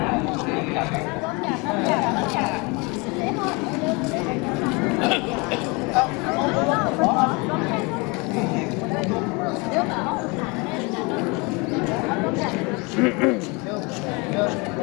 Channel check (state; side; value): quieter; right; 28.0 dB